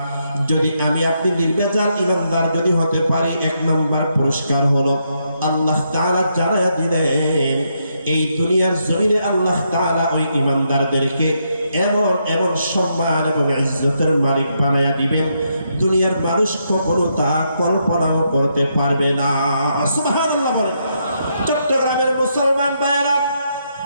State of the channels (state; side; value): inverted; both; correlation -0.79